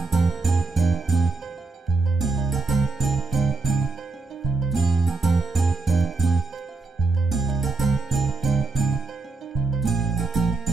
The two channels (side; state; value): left; quieter; 3.8 dB